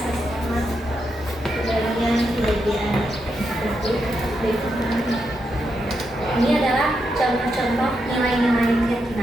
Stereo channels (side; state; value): both; normal; correlation 0.83